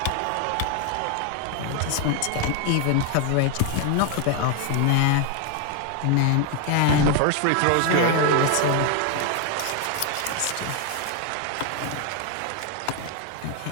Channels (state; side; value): different; both; correlation 0.01